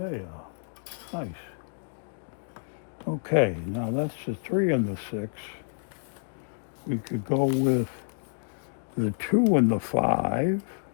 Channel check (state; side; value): silent; right; digital silence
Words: Nice. Okay, now that's the 3 and the 6. We could go with the 2 and the 5